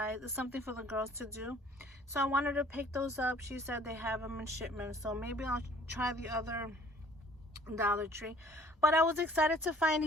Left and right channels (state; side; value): normal; both; correlation 0.54